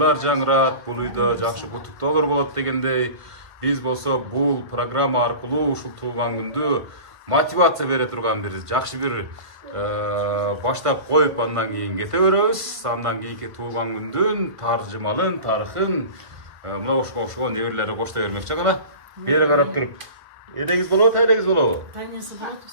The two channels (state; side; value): late; left; 1.5 ms